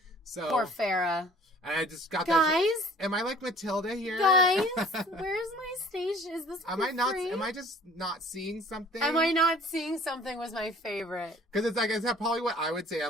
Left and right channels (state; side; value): normal; both; correlation 0.51